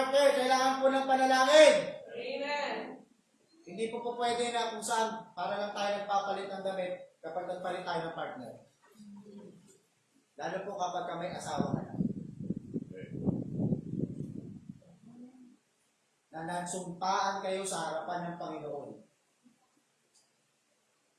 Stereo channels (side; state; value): both; identical; correlation 1.00